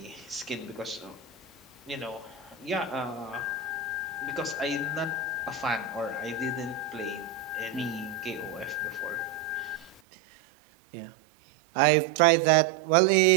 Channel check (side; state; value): left; drops out; at 10.0 s